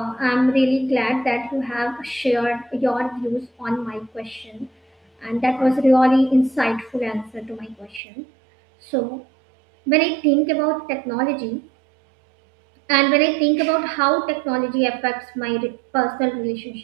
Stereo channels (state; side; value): drops out; left; at 8.0 s